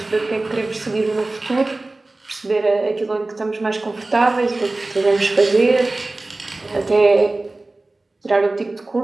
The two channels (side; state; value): left; quieter; 3.0 dB